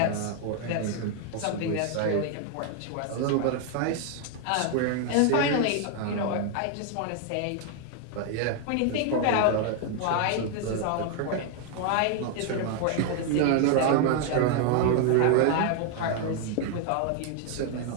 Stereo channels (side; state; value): both; different; correlation 0.00